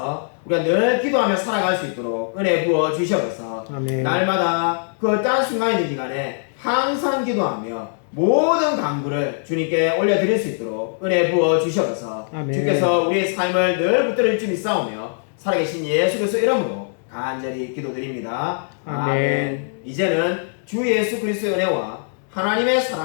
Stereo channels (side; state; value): right; silent; digital silence